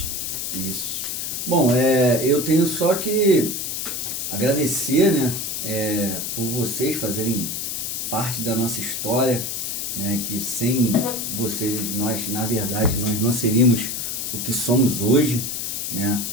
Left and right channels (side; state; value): left; noise; hiss, 3 dB below the sound